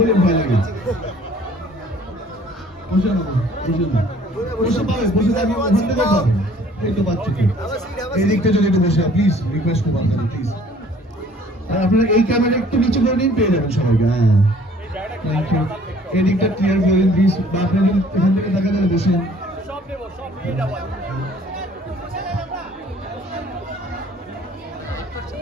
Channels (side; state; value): both; normal; correlation 0.55